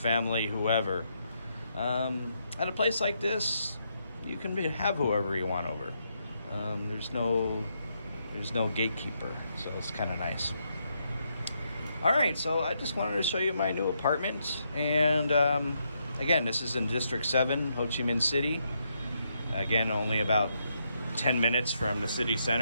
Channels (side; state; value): both; inverted; correlation -0.79